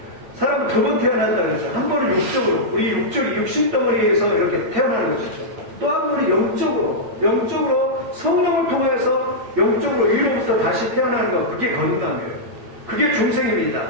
사람은 두 번 태어난다 그랬죠. 한 번은 육적으로, 우리 육신덩어리에서 이렇게 태어나는 것이죠. 또 한 번은 영적으로 성령을 통해서 영적으로 위로부터 다시 태어나는 것, 그게 거듭남이에요. 그게 중생입니다.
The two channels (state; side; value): late; left; 8.6 ms